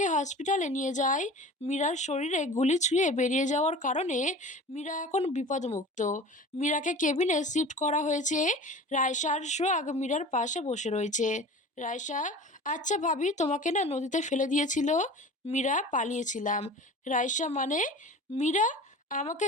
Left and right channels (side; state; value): both; normal; correlation 0.38